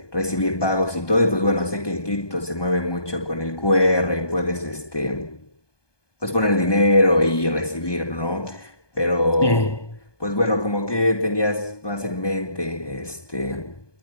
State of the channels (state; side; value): late; right; 1.2 ms